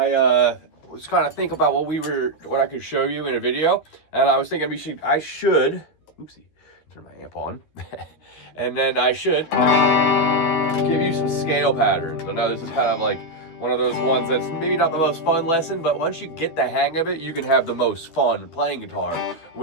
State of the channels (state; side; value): late; right; 12 ms